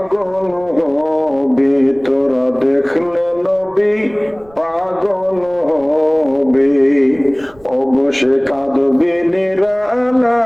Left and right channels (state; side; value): noise; right; rumble, 26 dB below the sound